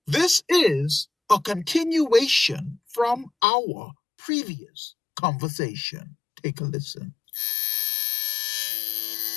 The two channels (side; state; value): right; drops out; at 3.3 s